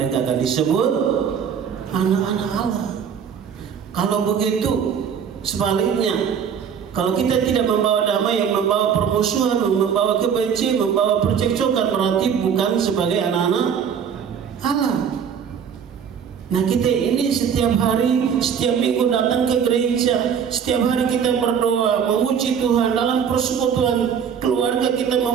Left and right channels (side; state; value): left; quieter; 7.5 dB